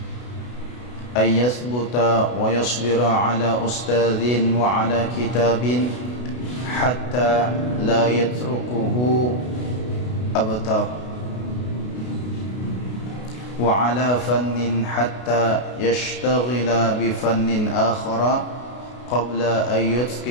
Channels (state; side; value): late; right; 32 ms